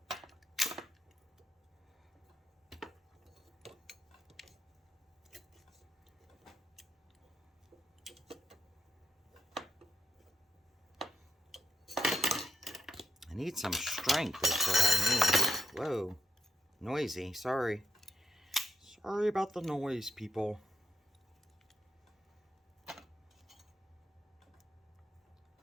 I need some strength is what I need. Whoa. Noisy, sorry. Sorry about the noise, people.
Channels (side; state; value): both; normal; correlation 0.78